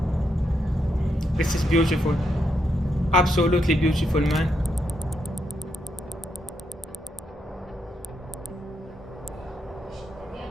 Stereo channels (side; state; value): both; normal; correlation 0.80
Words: This is beautiful, absolutely beautiful, man.